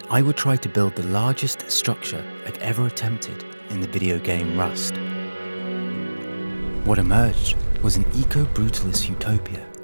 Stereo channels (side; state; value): both; inverted; correlation -1.00